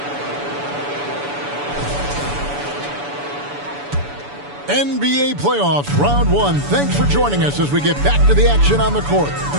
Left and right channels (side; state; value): left; late; 7.0 ms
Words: NBA playoffs, round one. Thanks for joining us as we get back to the action on the court.